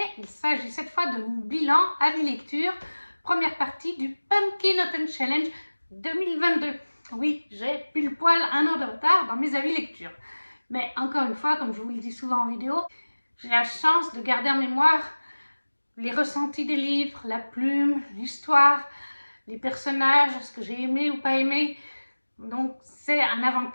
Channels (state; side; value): inverted; both; correlation -1.00